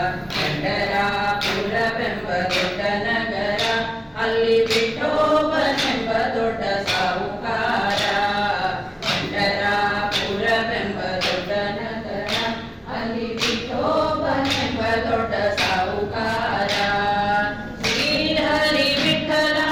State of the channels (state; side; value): identical; both; correlation 1.00